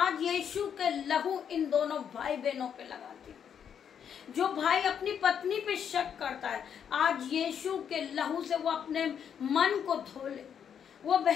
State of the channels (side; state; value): right; quieter; 8.1 dB